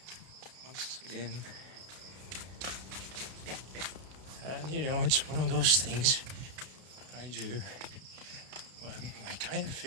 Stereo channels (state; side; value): late; left; 32 ms